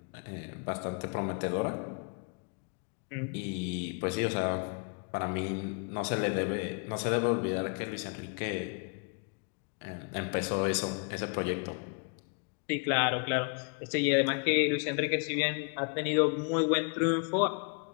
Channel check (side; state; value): right; quieter; 37.9 dB